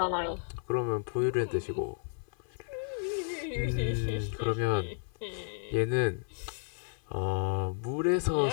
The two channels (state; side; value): silent; right; 56 dB below the other